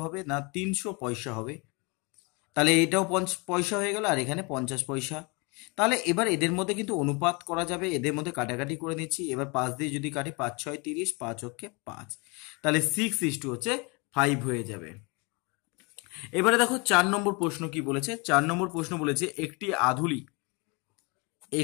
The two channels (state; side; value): quieter; right; 29.5 dB